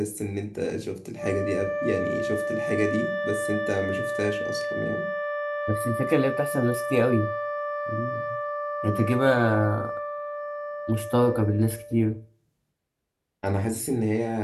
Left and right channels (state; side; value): identical; both; correlation 1.00